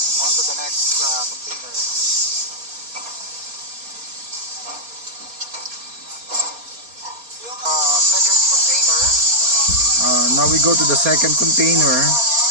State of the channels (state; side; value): late; left; 4.3 ms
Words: On to the next container. Second container. Now we go to the second container,